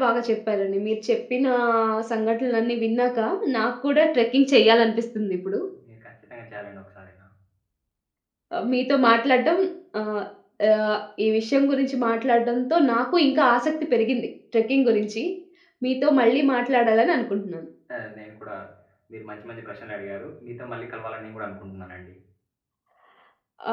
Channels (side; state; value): both; identical; correlation 1.00